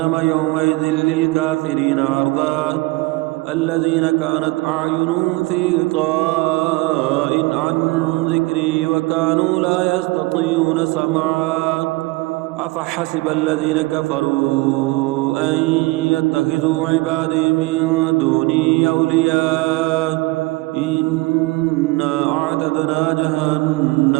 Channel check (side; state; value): left; quieter; 22.8 dB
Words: يومئذ للكافرين عرضا الذين كانت أعينهم في غطاء عن ذكري وكانوا لا يستطيعون سمعا أفحسب الذين كفروا أن يتخذوا عبادي من دوني أولياء إنا أعتدنا